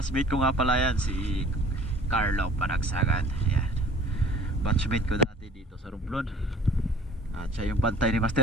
ko nga pala yan, si Carlo Panagsagan. Ayan, batchmate ko dati dito sa Romblon. At siya yung pantay ni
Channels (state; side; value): normal; both; correlation 0.48